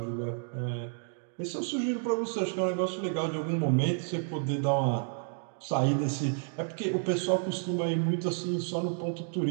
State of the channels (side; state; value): left; silent; digital silence